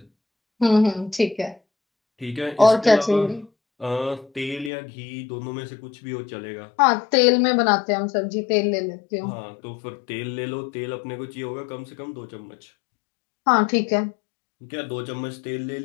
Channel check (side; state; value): right; drops out; at 4.7 s